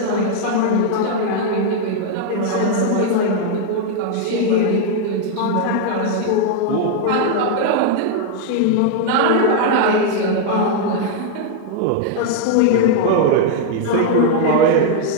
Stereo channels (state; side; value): different; both; correlation 0.00